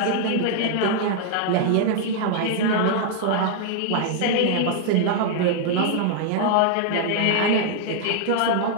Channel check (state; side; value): different; both; correlation -0.01